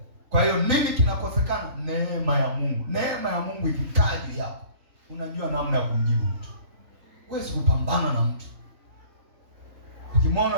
Kwa hiyo nini kinakosekana? Neema ya Mungu. Neema ya Mungu ikikaa juu yako, unajua namna ya kumjibu mtu. Huwezi kupambana na mtu.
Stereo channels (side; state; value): left; late; 3.5 ms